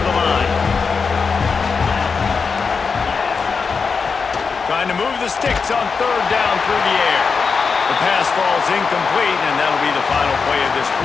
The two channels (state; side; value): quieter; right; 5.2 dB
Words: the line. Trying to move the sticks on 3rd down through the air. The pass falls incomplete, and that'll be the final play of this